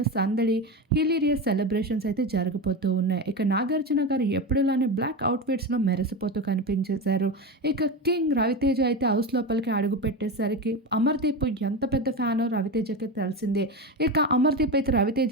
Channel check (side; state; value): both; normal; correlation 0.20